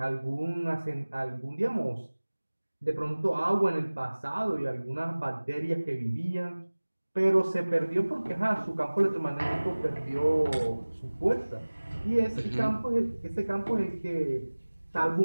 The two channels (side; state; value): both; inverted; correlation -1.00